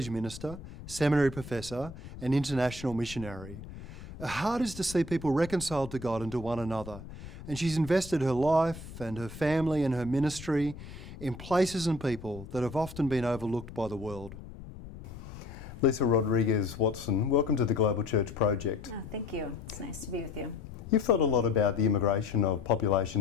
minister, seminary professor and international missionary. Her heart is to see people reconciled to God and to one another, and she's invested her life and her family and her ministry in places and people that have often been overlooked by the world. Lisa Rodriguez-Watson, welcome to the Global Church Project. Oh, thank you. It's nice to be with you. You've thought a lot about the immigration of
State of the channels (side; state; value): left; noise; rumble, 14 dB below the sound